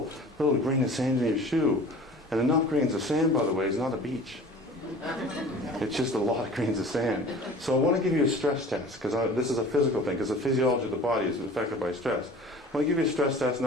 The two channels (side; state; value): both; normal; correlation 0.43